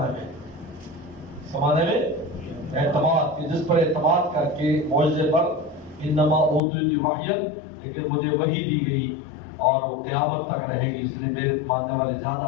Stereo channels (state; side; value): drops out; right; at 6.6 s